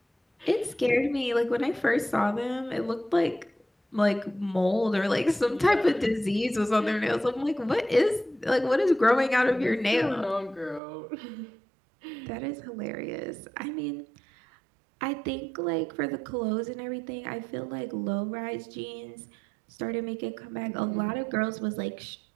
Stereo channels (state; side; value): drops out; left; at 10.8 s